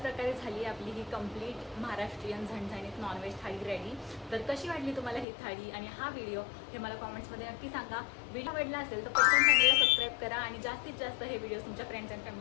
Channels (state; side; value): drops out; right; at 5.2 s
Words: झाली आपली ही कंप्लीट महाराष्ट्रीयन झणझणीत नॉनव्हेज थाळी रेडी. तर कशी वाटली तुम्हाला ही थाळी आणि हा व्हिडिओ हे मला कॉमेंट्समध्ये नक्की सांगा. व्हिडिओ आवडला असेल तर पटकन चॅनलला सबस्क्राईब करा आणि जास्तीत जास्त हे व्हिडिओ तुमच्या फ्रेंड्स अँड